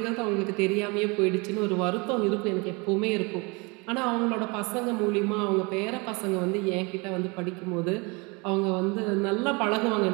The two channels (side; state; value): left; quieter; 28.5 dB